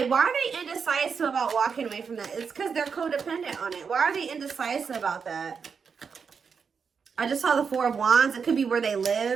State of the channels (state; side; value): quieter; left; 6.0 dB